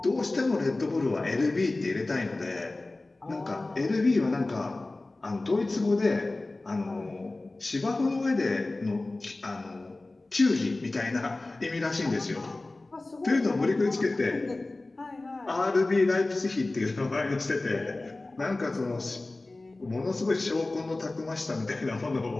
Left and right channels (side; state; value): right; quieter; 3.0 dB